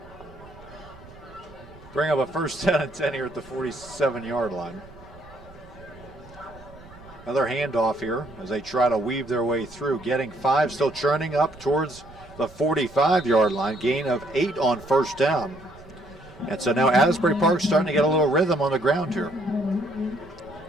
Bring up a first 10 and 10 here at the 47-yard line. Another handoff here as they try to weave their way through. Getting 5, still churning up towards the 45-yard line. Gain of 8 on first down. And so now Asbury Park's starting to get a little rhythm on the ground here.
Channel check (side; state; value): right; noise; rumble, 21 dB below the sound